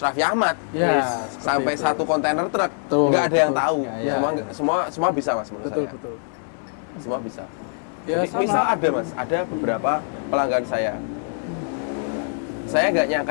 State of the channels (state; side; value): silent; right; 63 dB below the other